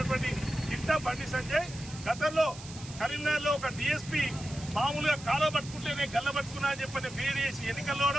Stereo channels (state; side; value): noise; right; hiss, 15 dB below the sound